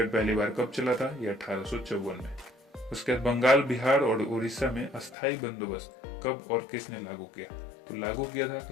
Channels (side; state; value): right; drops out; at 5.2 s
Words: पहली बार कब चला था, ये 1854 में। उसके बाद बंगाल, बिहार और उड़ीसा में अस्थायी बंदोबस्त कब और किसने लागू किया, तो लागू किया था